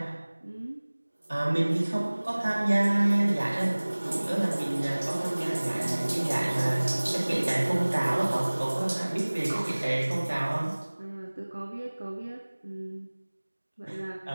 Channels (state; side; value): inverted; both; correlation -1.00